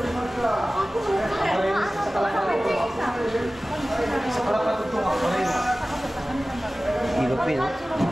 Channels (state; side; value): normal; both; correlation 0.97